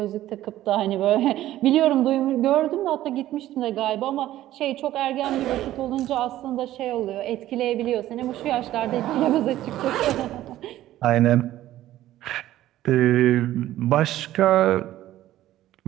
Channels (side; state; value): left; quieter; 14.1 dB